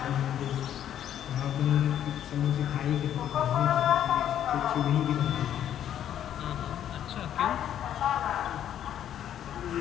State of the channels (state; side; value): quieter; right; 10.4 dB